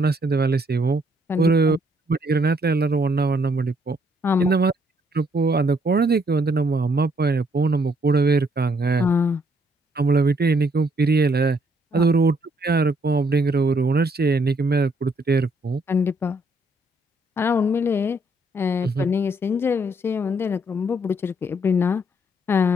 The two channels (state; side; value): normal; both; correlation 0.70